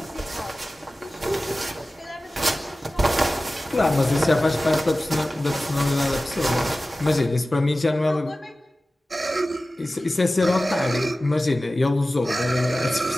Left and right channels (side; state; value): both; normal; correlation 0.96